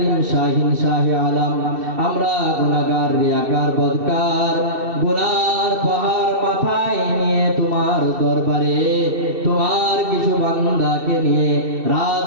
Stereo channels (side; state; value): left; late; 2.7 ms